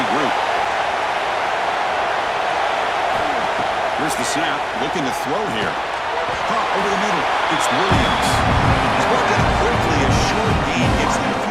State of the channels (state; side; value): identical; both; correlation 1.00